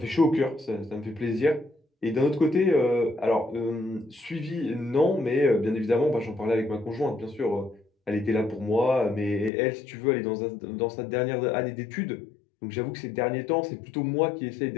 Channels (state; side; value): drops out; right; at 9.5 s